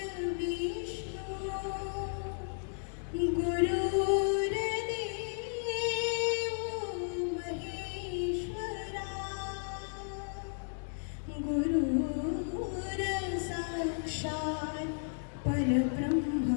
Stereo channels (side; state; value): right; silent; 55 dB below the other